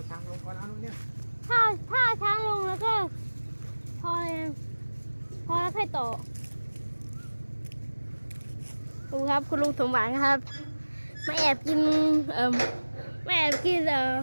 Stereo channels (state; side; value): inverted; both; correlation -1.00